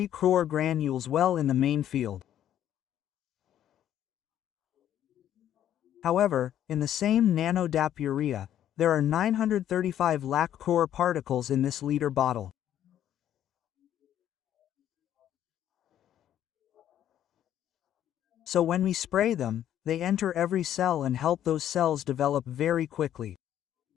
crore granules well in the main field. However, in the same nano DAP urea, there are 935 lakh crore particles in this liter bottle. So when we spray them, they enter every cell and help those cells develop very quickly.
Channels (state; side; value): quieter; right; 11.1 dB